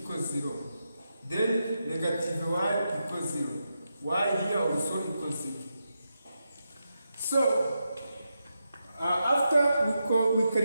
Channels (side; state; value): both; inverted; correlation -0.86